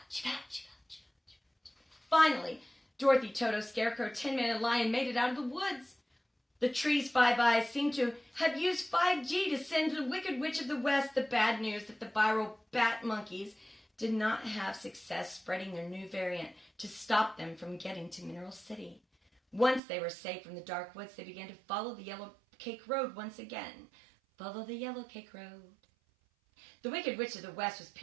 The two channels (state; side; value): drops out; left; at 19.8 s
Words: Fauci, Fauci. Finally, Dorothy, Toto, Scarecrow, Tin Man, and Lion made it out of the woods. The tree's 5 eyes seemed to have used 5G to send to the Wicked Witch of the West the bad news that the viral bat monkeys did not have success spreading their new variant to stop them from getting to Mineral City. Once they were safe from the dark woods, they began to follow the yellow cake road once again. Follow the yellow cake road. The Wicked Witch of the West was